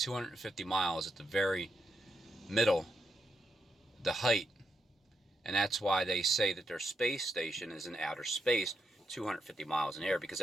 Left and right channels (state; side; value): normal; both; correlation 0.82